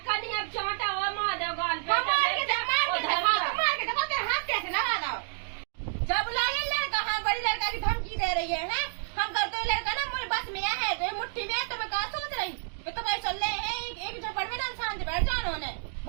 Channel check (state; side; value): silent; left; digital silence